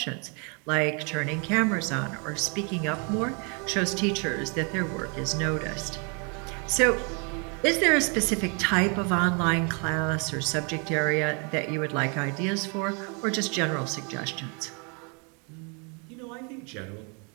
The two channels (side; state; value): left; quieter; 35.2 dB